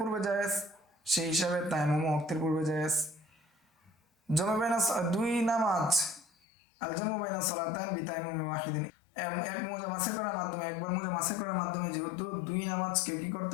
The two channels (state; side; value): drops out; right; at 6.2 s